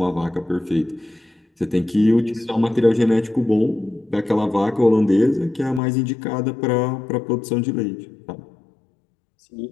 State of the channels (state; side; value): drops out; right; at 5.8 s